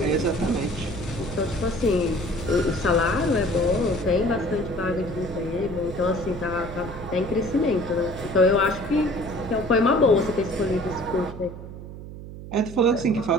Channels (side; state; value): right; noise; hum, 12 dB below the sound